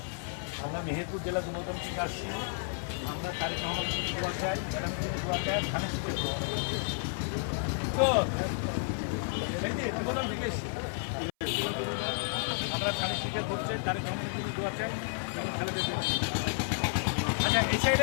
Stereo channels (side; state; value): right; silent; 57 dB below the other